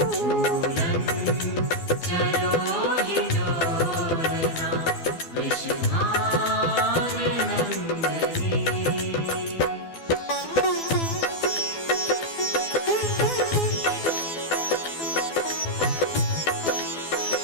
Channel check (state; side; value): late; right; 12 ms